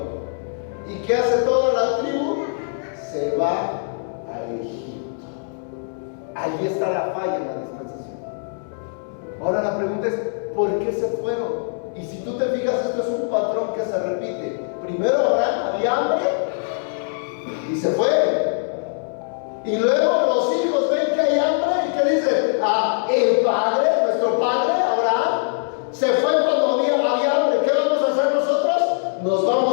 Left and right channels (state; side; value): silent; right; digital silence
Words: ¿Y qué hace toda la tribu? Se va a Egipto. Allí está la falla en la dispensación. Ahora la pregunta es, ¿por qué se fueron? Y si tú te fijas, esto es un patrón que se repite. Primero Abraham había hambre y se fue. Y luego los hijos ven que hay hambre y que dicen, el padre, nuestro padre Abraham, se fue cuando había hambre. ¿Qué vamos a hacer nosotros? Nos